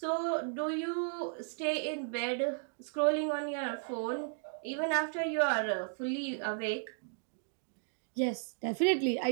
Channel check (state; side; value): silent; left; digital silence